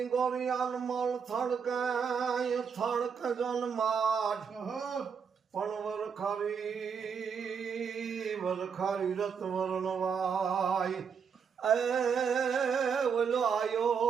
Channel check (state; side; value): quieter; left; 6.5 dB